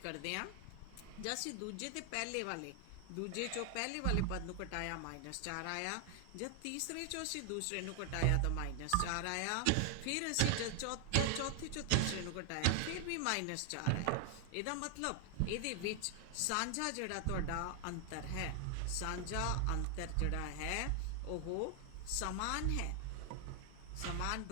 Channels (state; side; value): different; both; correlation 0.00